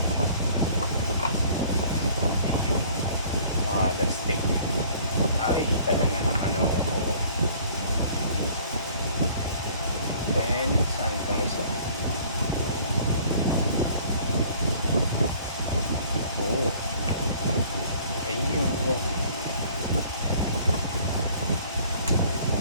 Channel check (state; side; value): inverted; both; correlation -0.54